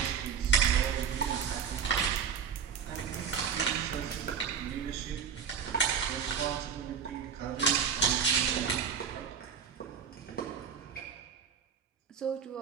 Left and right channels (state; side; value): quieter; left; 7.0 dB